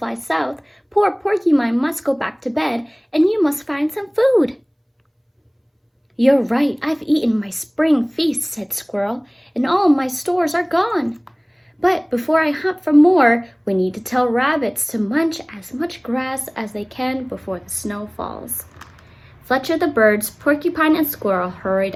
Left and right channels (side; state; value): both; identical; correlation 1.00